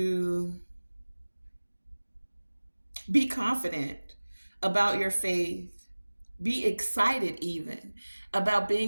be confident about your faith, be excited even about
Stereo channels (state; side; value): inverted; both; correlation -1.00